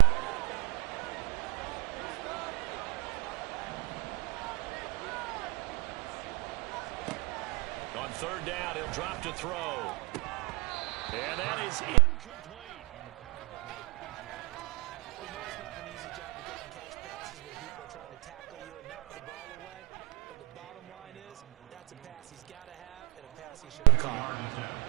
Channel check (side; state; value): left; quieter; 26.1 dB